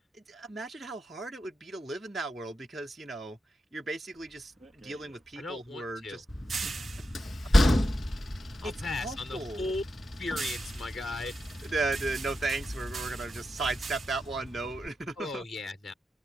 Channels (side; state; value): both; normal; correlation 0.87